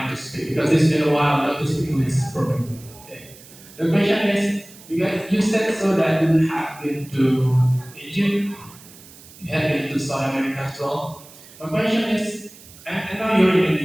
to speak because it's been a while not to speak English properly. Okay. The question is, you said so that you have been to Egypt, you have been to South America as well. My question is, and now you're in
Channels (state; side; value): noise; right; hiss, 21 dB below the sound